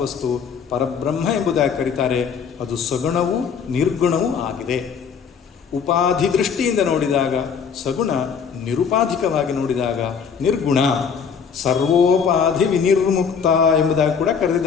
ವಸ್ತು, ಪರಬ್ರಹ್ಮ ಎಂಬುದಾಗಿ ಕರೀತಾರೆ. ಅದು ಸಗುಣವೂ ನಿರ್ಗುಣವೂ ಆಗಿದೆ. ಉಪಾಧಿ ದೃಷ್ಟಿಯಿಂದ ನೋಡಿದಾಗ ಸಗುಣ, ನಿರುಪಾಧಿಕವಾಗಿ ನೋಡಿದಾಗ ನಿರ್ಗುಣ. ಸರ್ವೋಪಾಧಿ ವಿನಿರ್ಮುಕ್ತ ಎಂಬುದಾಗಿ ಕೂಡ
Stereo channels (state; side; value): quieter; right; 6.6 dB